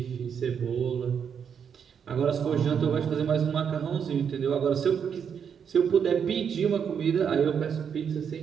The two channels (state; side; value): quieter; left; 7.4 dB